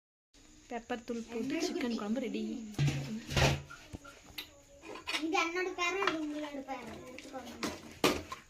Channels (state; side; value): identical; both; correlation 1.00